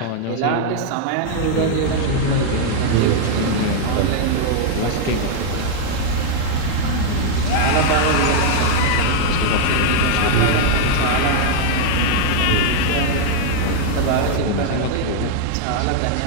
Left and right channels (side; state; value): both; different; correlation 0.00